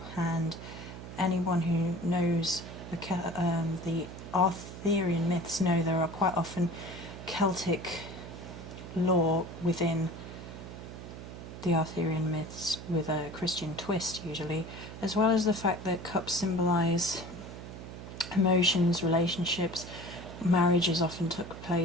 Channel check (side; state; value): right; noise; hum, 12 dB below the sound